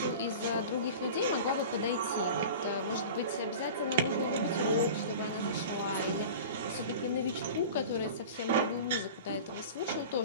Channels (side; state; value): both; inverted; correlation -0.36